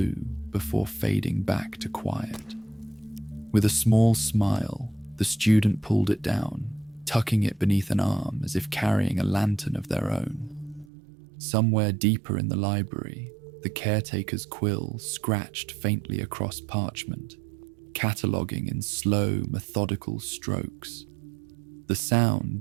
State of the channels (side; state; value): left; drops out; at 10.9 s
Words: before fading back to quiet. With a small smile, the student pulled it down, tucking it beneath an arm as if carrying a lantern of their own. Somewhere deeper in the library, the caretaker's quill scratched faintly across parchment, cataloguing in slow, methodical strokes. The